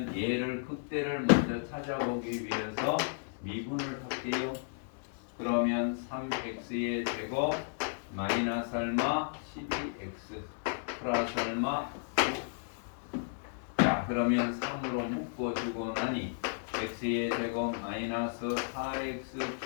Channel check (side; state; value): right; silent; digital silence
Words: 얘를 극대를 먼저 찾아보기 위해서 미분을 할게요. 그러면 3x의 제곱 마이너스 얼마 12x 플러스 얼마 9. 자, 그러면 3으로 묶어주고 나니 x의 제곱 마이너스 4x